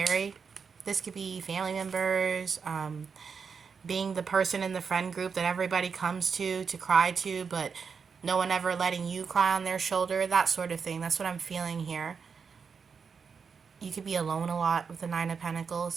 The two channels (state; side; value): quieter; left; 5.9 dB